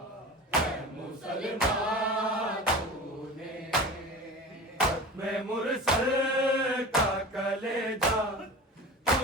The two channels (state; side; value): normal; both; correlation 0.33